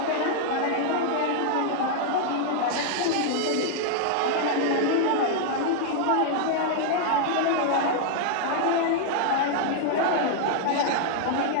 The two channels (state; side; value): different; both; correlation 0.00